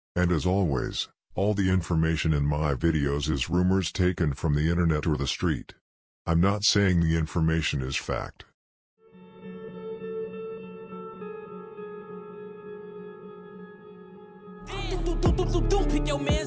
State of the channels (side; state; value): both; identical; correlation 1.00